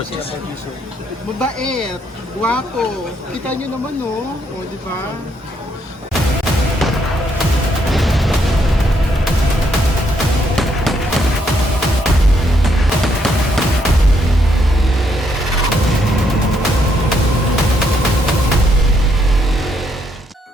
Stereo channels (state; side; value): normal; both; correlation 0.74